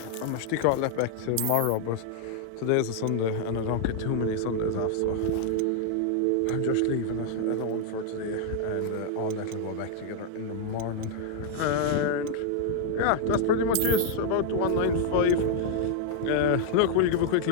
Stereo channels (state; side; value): different; both; correlation 0.00